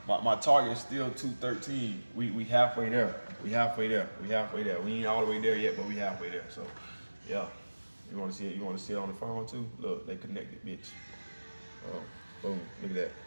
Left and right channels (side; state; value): both; inverted; correlation -1.00